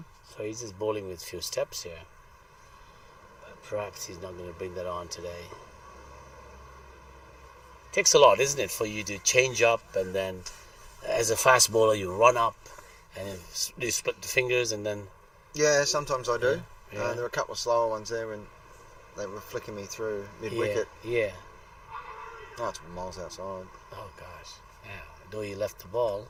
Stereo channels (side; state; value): both; identical; correlation 1.00